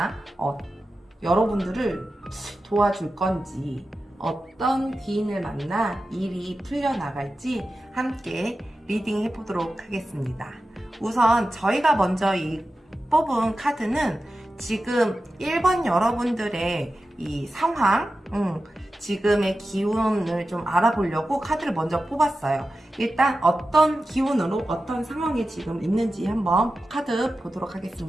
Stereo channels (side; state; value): both; normal; correlation 0.93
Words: 여러분들을 도와줄 건지, 어떤 귀인을 만나 일이 풀려나갈지 함께 리딩 해보도록 하겠습니다. 우선 저희가 먼저 뽑은 카드는 지금 1번 여러분들의 이 상황, 지금의 기운을 좀 알아보려고 카드를 먼저 뽑았어요. 일단 어떤 기운으로 어떤 상황에 지금 있는지 한번 카드 보도록